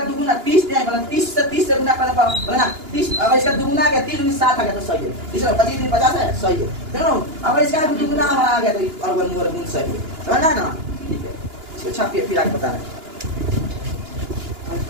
दुगुना 30 है, मतलब 30 से गुना करना बोला ना 30, अगर इसका दुगुना आ गया 30 गुना 60 आ गया तो सही है, इसका 25 50 है सही है, देखो अगर इसका दुगुना हमारा आ गया तो वर्गमूल सही है, समझ आया ना, ठीक है। इसको छापिए फिर आगे बता रहे हैं।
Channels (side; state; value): left; late; 2.9 ms